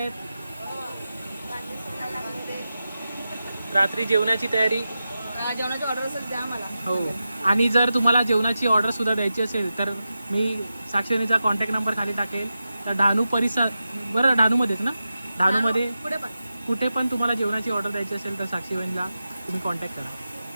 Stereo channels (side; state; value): both; inverted; correlation -0.92